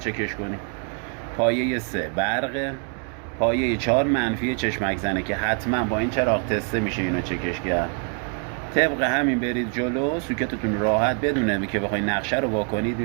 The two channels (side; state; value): left; quieter; 39.7 dB